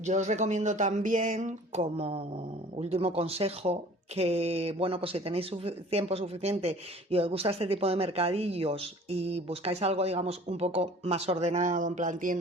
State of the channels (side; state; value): both; normal; correlation 0.48